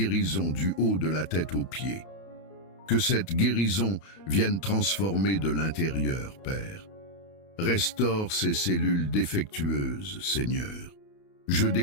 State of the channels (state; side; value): late; right; 31 ms